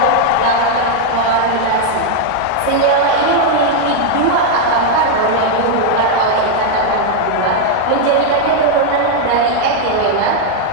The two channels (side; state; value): both; different; correlation 0.00